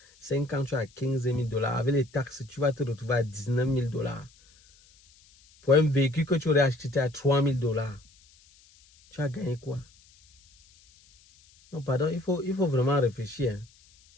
5 ans, tu as $15,000. Avec les taxes, tu vas te retrouver à $19,000. Pour un véhicule que tu aurais acheté à $3,000. Tu as gagné quoi? Non, pardon, il faut vraiment réfléchir.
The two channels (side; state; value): left; noise; hiss, 29 dB below the sound